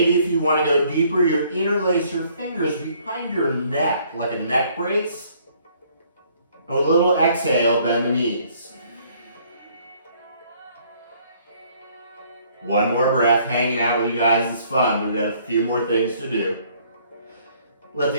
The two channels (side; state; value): both; inverted; correlation -0.63